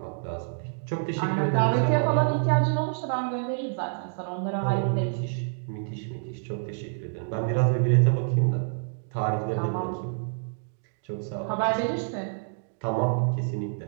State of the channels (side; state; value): left; silent; digital silence